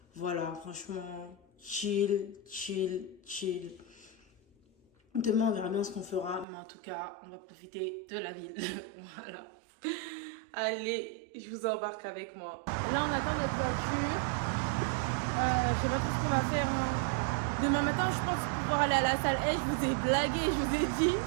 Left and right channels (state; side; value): drops out; left; at 6.5 s